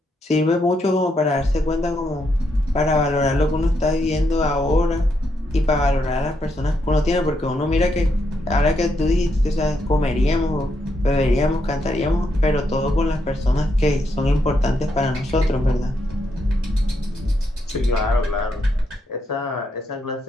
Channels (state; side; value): normal; both; correlation 0.79